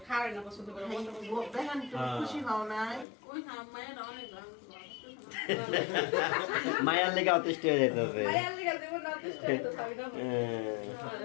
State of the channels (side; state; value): right; drops out; at 3.1 s